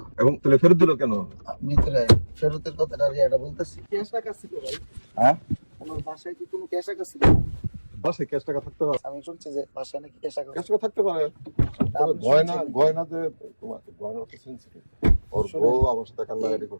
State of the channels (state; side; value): inverted; both; correlation -1.00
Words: এবং তাহলে ফেরত দিল কেন? ভিতরে ফেরতের কথাটা এটা বলতেছি। ক্যাশ টাকা ছিল ভাই? হ্যাঁ, আমার বাসায় কি কোনো ক্যাশ টাকা ছিল? বাসায় ক্যাশ টাকা থাকতে পারে, আমি শুনছি যে বাসায় নাকি ক্যাশ টাকা। ক্যাশ টাকা থাকতে পারে। তবে আপনি গয়না শুনছেন? গয়না যে তোমাকে গয়না তো সেন্সিটিভ। ওর বউ আমার সাথে কান্নাকাটি